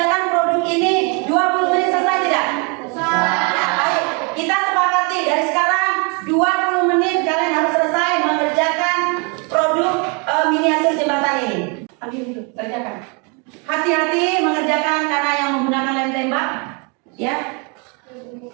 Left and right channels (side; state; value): left; quieter; 33.8 dB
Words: Kerjakan. Hati-hati mengerjakan karena yang menggunakan lem tembak, ya.